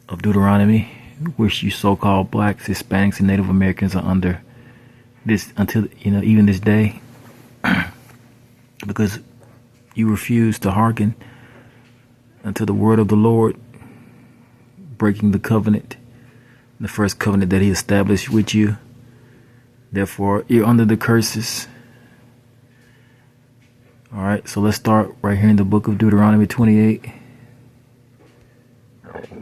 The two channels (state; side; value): identical; both; correlation 1.00